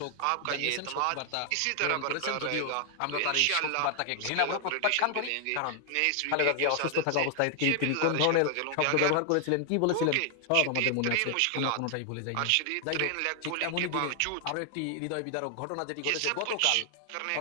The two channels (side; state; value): both; different; correlation 0.00